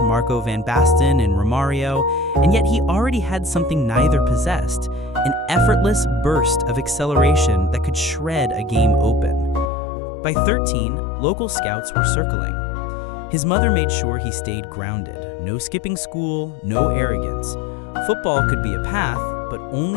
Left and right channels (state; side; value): drops out; right; at 9.7 s